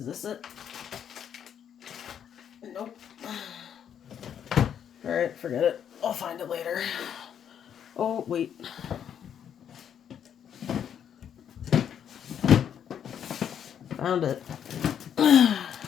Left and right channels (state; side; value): quieter; right; 8.8 dB